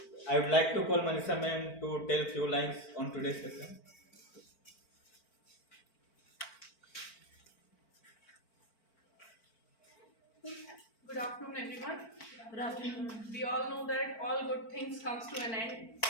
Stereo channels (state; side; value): late; right; 4.5 ms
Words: I would like to call Manisha ma'am to tell few lines on today's session. Good afternoon, everyone. Good afternoon. We all know that all good things comes to an end.